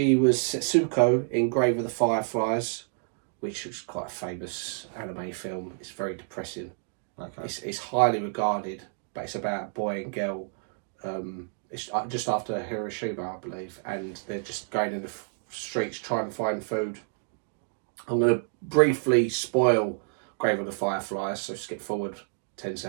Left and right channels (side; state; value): left; silent; digital silence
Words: was Setsuko in Grave of the Fireflies, which was quite a famous anime film. It's very depressing. Okay. It's highly regarded, but it's about a boy and girl. It's just after Hiroshima, I believe, and they're just going in the streets trying to find food. I'm going to briefly spoil Grave of the Fireflies, so skip forward 10